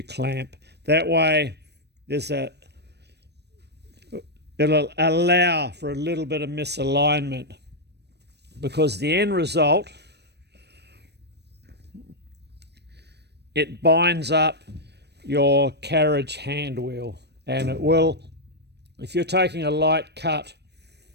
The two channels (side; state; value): left; late; 0.49 ms